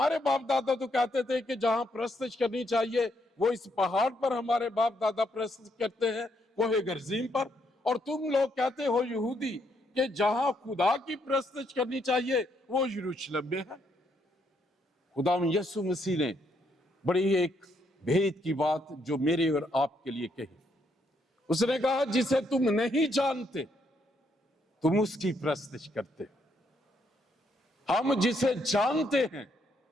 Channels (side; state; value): both; normal; correlation 0.75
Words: बाप दादा तो कहते थे कि जहां प्रस्तुत करनी चाहिए वो इस पहाड़ पर हमारे बाप दादा प्रस्तुत करते हैं, कोहे गर्जीम पर, और तुम लोग कहते हो यहूदी कि जहां खुदा की प्रस्तुत करनी चाहिए वो यरूशलेम में है। खुदा यीशु मसीह ने बड़ी एक भेद की बात जो मेरे और आपके लिए कही। उसने कहा जिसे तुम नहीं जानते तुम उसकी प्रस्तुत करते हो, हम जिसे जानते हैं